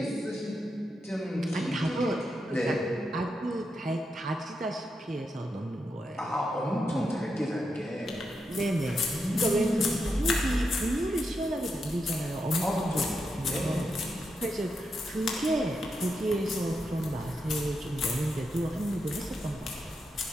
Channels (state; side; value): normal; both; correlation 0.85